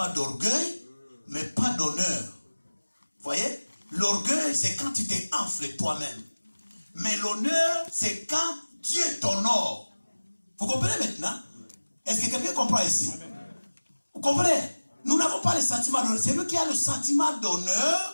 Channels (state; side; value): inverted; both; correlation -1.00